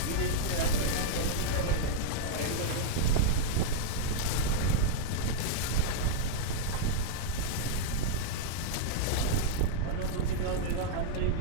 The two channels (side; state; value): both; different; correlation -0.01